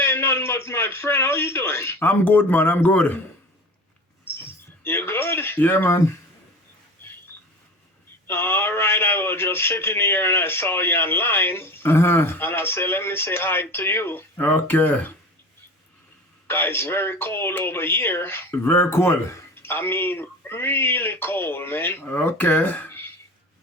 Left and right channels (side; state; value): both; normal; correlation 0.35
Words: nothing much, my friend. How you doing? I'm good, man. I'm good. You good? Yeah, man. All right. I was just sitting here and I saw you online, and I said, let me say hi to you. Okay. Guys, it's very cold over here. Very cool. I mean, really cold, man. Okay.